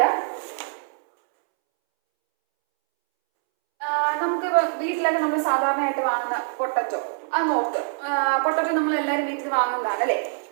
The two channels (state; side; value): silent; left; 63 dB below the other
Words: നമുക്ക് വീട്ടിലൊക്കെ നമ്മൾ സാധാരണയായിട്ട് വാങ്ങുന്ന പൊട്ടറ്റോ, അത് നോക്ക്. പൊട്ടറ്റോ നമ്മൾ എല്ലാവരും വീട്ടിൽ വാങ്ങുന്നതാണ് അല്ലേ.